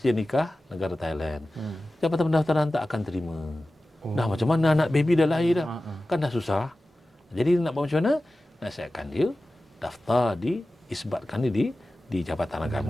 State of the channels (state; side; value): normal; both; correlation 0.95